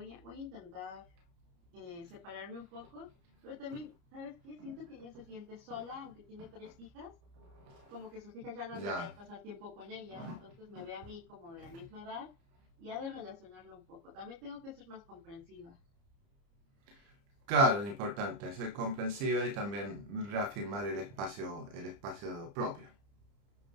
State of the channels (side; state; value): left; late; 30 ms